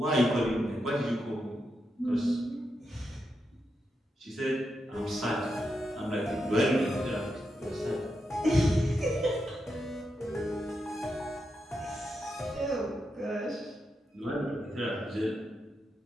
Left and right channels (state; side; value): normal; both; correlation 0.85